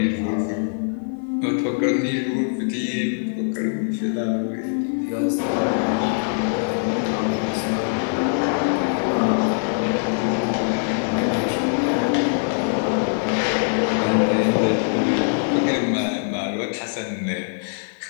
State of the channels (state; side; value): silent; right; 56 dB below the other